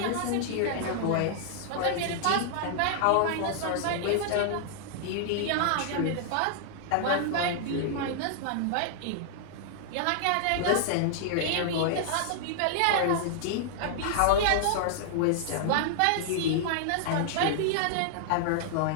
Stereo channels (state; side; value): different; both; correlation -0.01